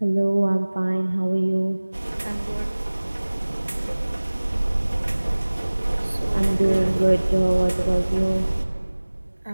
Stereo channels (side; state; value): both; inverted; correlation -1.00